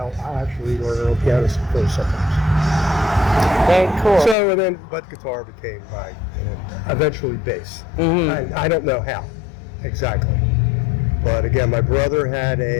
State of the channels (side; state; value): right; drops out; at 4.4 s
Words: actually learn on piano first sometimes. Very cool. So but guitar became eventually bass. I don't know how exactly, but again, my brother had